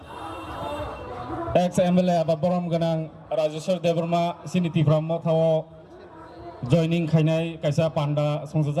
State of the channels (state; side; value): identical; both; correlation 1.00